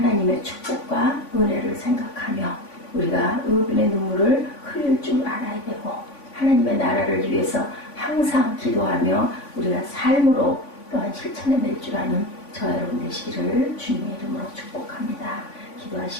축복과 은혜를 생각하며 우리가 의분의 눈물을 흘릴 줄 알아야 되고, 하나님의 나라를 위해서 항상 기도하며 우리가 삶으로 또한 실천해낼 줄 아는 저 여러분 되시기를 주님의 이름으로 축복합니다.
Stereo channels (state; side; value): late; right; 3.5 ms